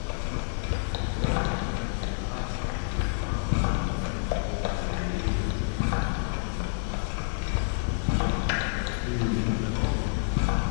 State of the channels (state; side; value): silent; right; 56 dB below the other